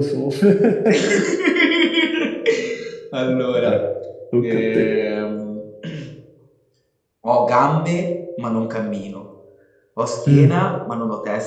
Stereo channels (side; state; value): both; identical; correlation 1.00